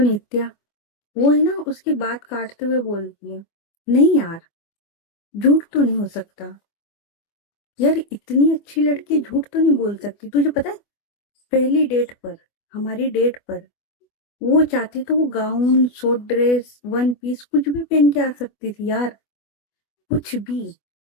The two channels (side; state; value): right; late; 24 ms